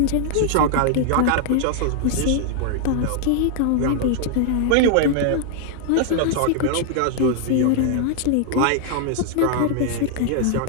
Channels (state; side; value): different; both; correlation 0.00